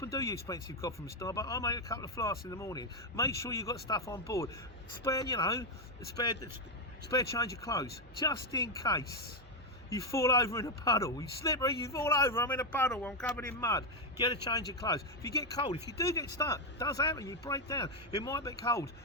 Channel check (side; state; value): both; normal; correlation 0.04